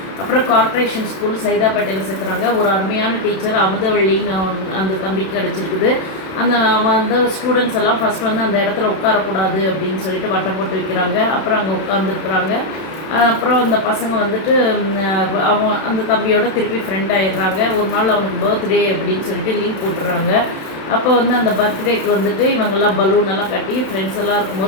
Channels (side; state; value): right; late; 32 ms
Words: அப்புறம் கார்ப்பரேஷன் ஸ்கூல் சைதாப்பேட்டையில் சேர்க்குறாங்க. ஒரு அருமையான டீச்சர் அமுதவள்ளின்னு அந்த தம்பிக்கு கிடச்சிருக்குது. அந்த ஸ்டூடெண்ட்ஸ் எல்லாம் ஃபஸ்ட் வந்து அந்த இடத்துல உட்காரக்கூடாது அப்படின்னு சொல்லிட்டு வட்டம் போட்டு வைக்கிறாங்க. அப்புறம் அங்கே உட்காந்துருக்குறாங்க. அப்புறம் அந்த பசங்க வந்துட்டு அந்த தம்பியோட திருப்பி ஃப்ரெண்ட் ஆகிடுறாங்க. ஒரு நாள் அவனுக்கு பர்த்டே அப்படின்னு சொல்லிட்டு லீவ் போட்டுடுறாங்க. அப்போ வந்து அந்த பர்த்டேக்கு வந்துட்டு இவங்கெல்லாம் பலூன் எல்லாம் கட்டி ஃப்ரெண்ட்ஸ் எல்லாம்